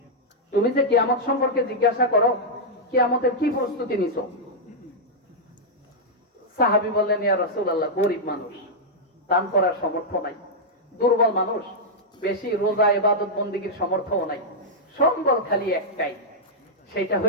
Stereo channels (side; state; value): both; normal; correlation -0.06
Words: তুমি যে কিয়ামত সম্পর্কে জিজ্ঞাসা করো, কিয়ামতের কি প্রস্তুতি নিছো? সাহাবী বললেন, ইয়া রাসূলুল্লাহ, গরীব মানুষ, দান করার সামর্থ্য নাই। দুর্বল মানুষ, বেশি রোজা ইবাদত বন্দেগীর সামর্থ্য নাই। সম্বল খালি একটাই, সেটা